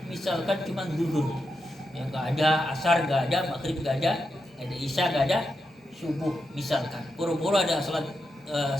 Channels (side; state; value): both; normal; correlation 0.86